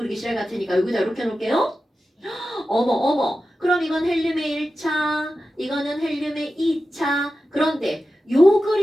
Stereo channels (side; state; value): both; normal; correlation 0.93